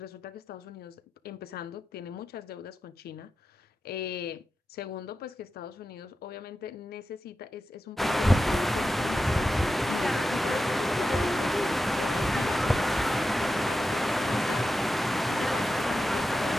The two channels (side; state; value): both; normal; correlation 0.91